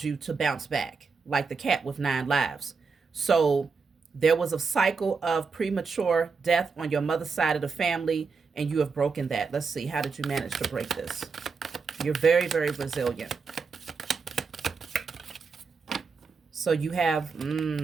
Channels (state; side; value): quieter; left; 4.9 dB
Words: you to bounce back like the cat with 9 lives. So there was a cycle of premature death on your mother's side of the family, and you have broken that. Let's see. How did you manage to break this? You're very, very resilient. So you have